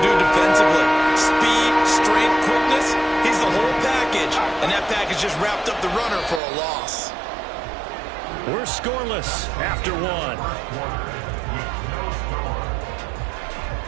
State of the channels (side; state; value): left; drops out; at 6.4 s